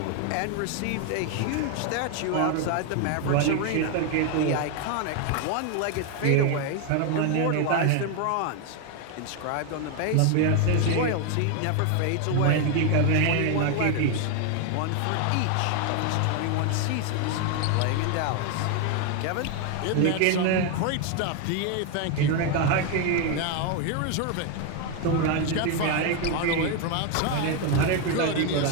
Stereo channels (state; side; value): different; both; correlation 0.01